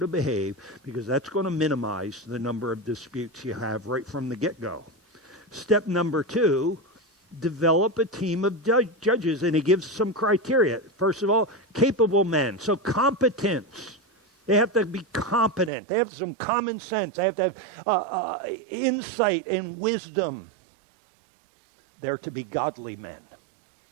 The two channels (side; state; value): left; drops out; at 15.7 s